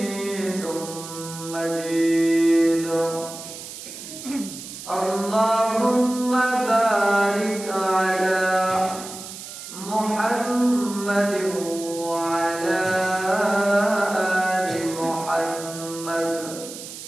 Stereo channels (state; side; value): noise; right; hiss, 12 dB below the sound